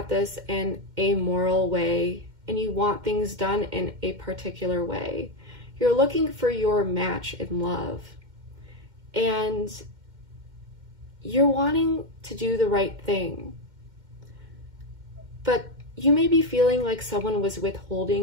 this in a moral way, and you want things done in a particular way. You're looking for your match in love, and you're wanting to do the right thing. But you may be feeling like someone was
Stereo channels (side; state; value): left; late; 2.1 ms